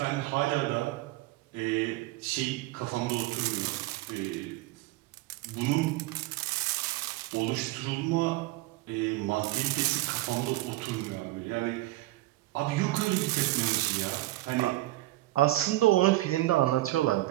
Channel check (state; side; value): quieter; left; 17.8 dB